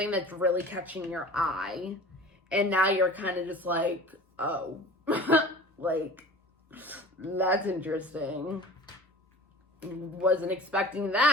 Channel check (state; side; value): normal; both; correlation 0.41